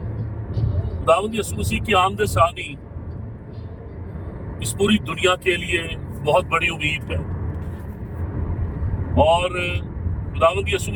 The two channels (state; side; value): identical; both; correlation 1.00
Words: खुदावंद यीशु मसीह की आमद सानी इस पूरी दुनिया के लिए बहुत बड़ी उम्मीद है। और खुदावंद यीशु